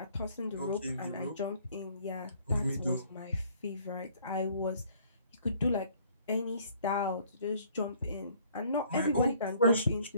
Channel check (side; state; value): both; inverted; correlation -0.59